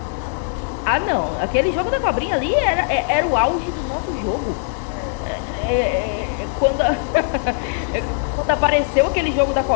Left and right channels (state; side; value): silent; right; digital silence